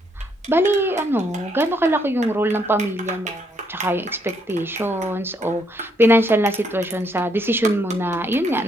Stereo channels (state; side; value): normal; both; correlation 0.72